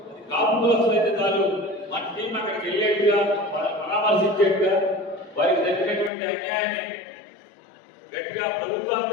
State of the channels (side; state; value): right; drops out; at 6.1 s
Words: కాపు కోసం అయితే చాలు మన టీం అక్కడికి వెళ్ళేట్టుగా, పరామర్శించేట్టుగా, వారికి జరిగినటువంటి అన్యాయాన్ని గట్టిగా ప్రభుత్వాన్ని